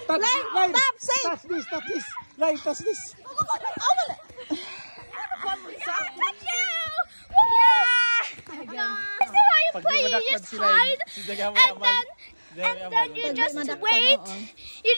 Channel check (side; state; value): both; inverted; correlation -1.00